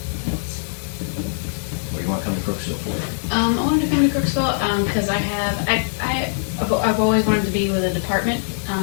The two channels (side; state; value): right; silent; digital silence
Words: What do you want to come to Crooksville for? I wanted to come to Crooksville because I've always wanted to be with a department